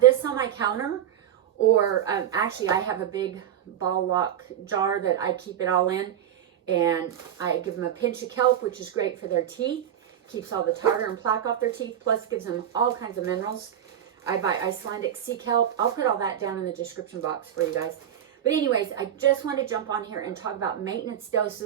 this on my counter, or actually I have a big ball lock jar that I keep it all in, and I give them a pinch of kelp, which is great for their teeth, keeps all the tartar and plaque off their teeth, plus gives them all kinds of minerals. I buy Icelandic sea kelp. I'll put all that down in the description box for you guys. But anyways, I just want to jump on here and talk about maintenance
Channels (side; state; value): left; quieter; 10.1 dB